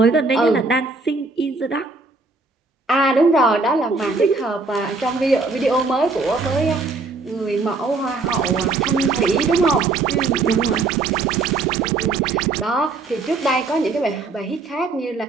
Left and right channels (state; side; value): quieter; left; 3.7 dB